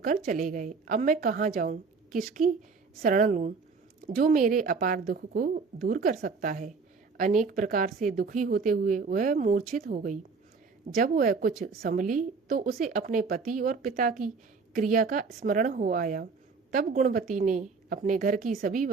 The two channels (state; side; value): quieter; left; 4.7 dB